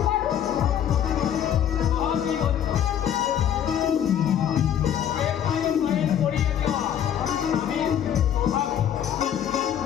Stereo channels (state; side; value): quieter; right; 9.6 dB